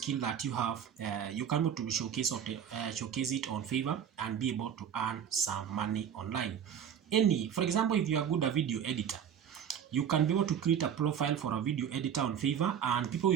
that you have, you can be able to showcase it on Fiverr and be able to earn some money online. For example, if you are good a video editor, you can be able to create a profile for a video editor on Fiverr, and people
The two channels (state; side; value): quieter; left; 8.6 dB